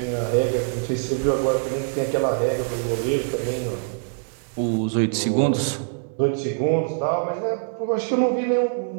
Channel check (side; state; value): left; silent; digital silence